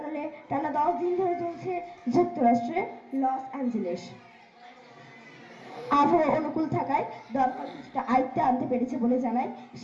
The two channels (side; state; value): both; identical; correlation 1.00